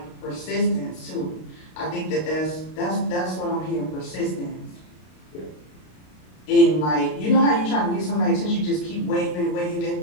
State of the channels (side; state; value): right; late; 32 ms